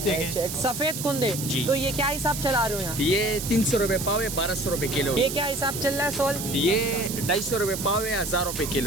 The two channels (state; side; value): noise; right; hiss, 6 dB below the sound